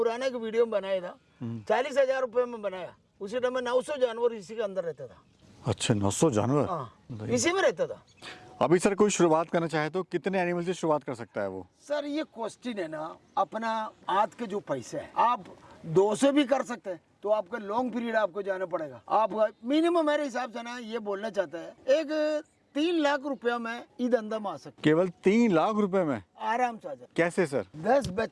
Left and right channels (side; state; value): both; identical; correlation 1.00